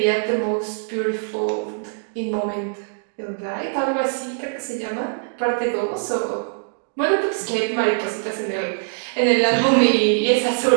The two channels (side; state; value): left; silent; digital silence